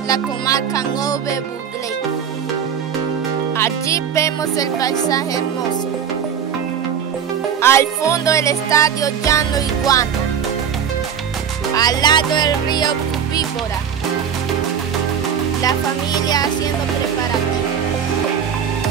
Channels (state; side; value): quieter; left; 8.0 dB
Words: la comarca Nove Buglé. Allí vemos el paisaje hermoso. Al fondo el estadio Llano Iguana. Al lado el río Cubíbora. La familia haciendo preparativos.